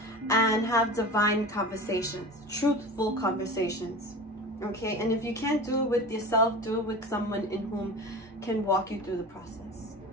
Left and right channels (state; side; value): normal; both; correlation 0.33